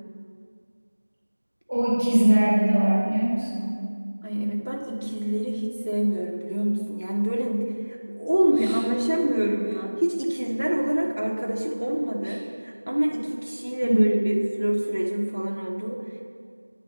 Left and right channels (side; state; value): both; inverted; correlation -1.00